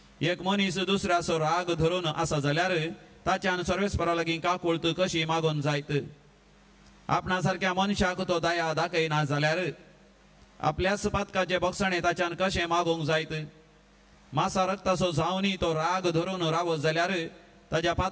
एक मनीस दुसऱ्याचो राग धरून आसा जाल्यार ताच्यान सर्वेस्परा लागीं काकुळट कशी मागोवन जायत आपणा सारक्या मनशाक तो दया दाखयना जाल्यार आपल्याच पातकाचे भोगसणे ताच्यान कशें मागोवंक जायत मासा रक्ताचो जावनी तो राग धरून रावत जाल्यार ताच्या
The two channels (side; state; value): both; identical; correlation 1.00